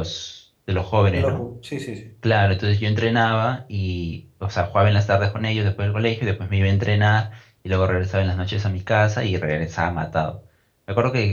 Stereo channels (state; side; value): identical; both; correlation 1.00